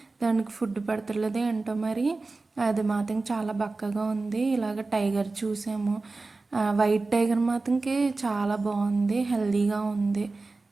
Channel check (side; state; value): left; quieter; 3.6 dB